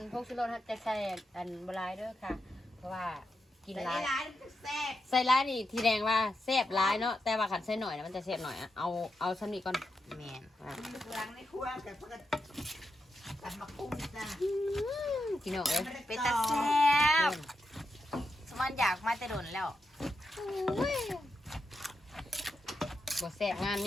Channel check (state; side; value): normal; both; correlation 0.86